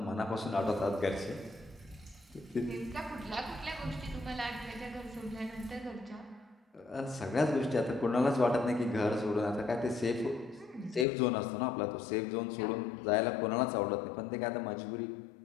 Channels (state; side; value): drops out; right; at 11.1 s